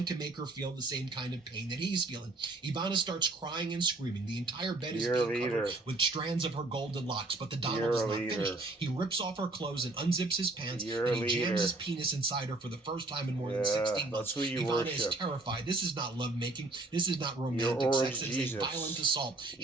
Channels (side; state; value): left; quieter; 3.0 dB